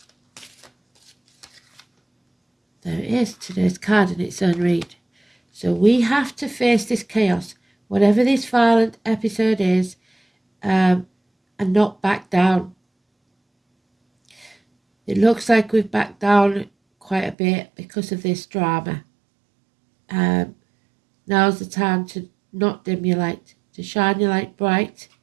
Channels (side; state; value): left; drops out; at 17.4 s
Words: There it is, today's card in its own read. So we have to face this chaos, whatever this violent episode is, and not back down. It looks like we've backed down quite a bit because of this drama. Now's the time to not dim your light, to shine your light bright.